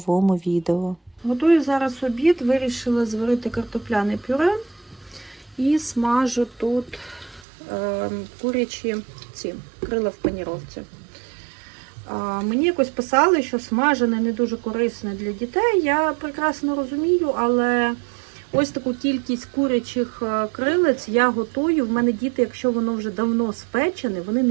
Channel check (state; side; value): drops out; left; at 7.5 s